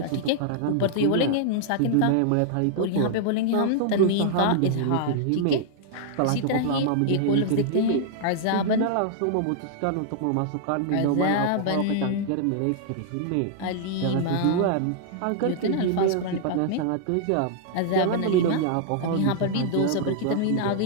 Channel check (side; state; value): both; different; correlation -0.01